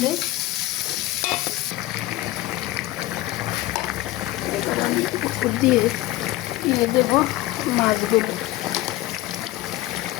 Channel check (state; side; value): quieter; right; 17.0 dB